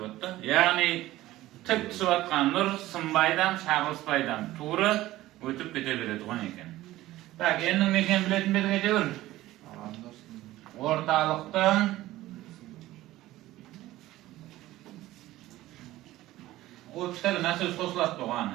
Yani tik su atkan nur sımbaydan, şagılsbaydan tuğru ötüp kete beredi gon eken. Tak, endin meken biletin beti ketebir. Ortalıktan o kitabı nasıl sosulat doğan?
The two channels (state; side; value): quieter; left; 16.2 dB